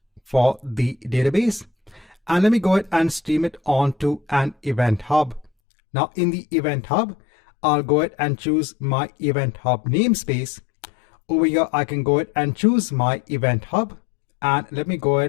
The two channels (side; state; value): right; drops out; at 5.5 s